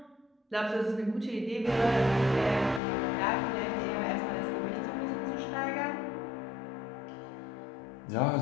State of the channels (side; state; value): right; drops out; at 2.8 s